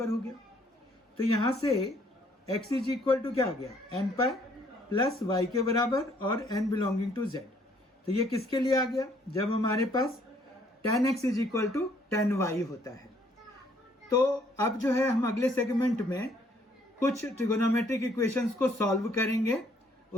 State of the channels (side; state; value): both; normal; correlation 0.64